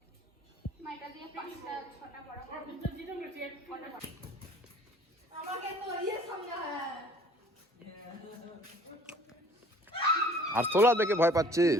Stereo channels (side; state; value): both; normal; correlation 0.53